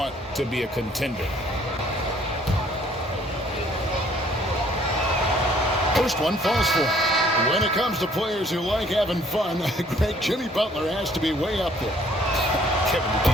to be a contender. First one falls for him. When it comes to players who like having fun, Greg, Jimmy Butler has to be way up there. Kevin, did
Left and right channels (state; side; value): normal; both; correlation 0.60